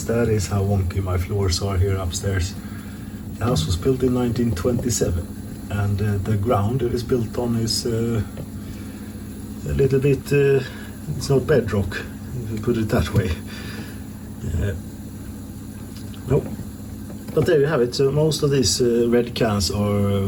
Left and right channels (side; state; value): both; identical; correlation 1.00